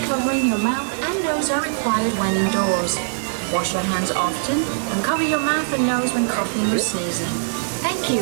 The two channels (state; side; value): silent; left; digital silence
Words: covering your mouth and nose are required when indoors. Wash your hands often and cover your mouth and nose when coughing or sneezing. Thank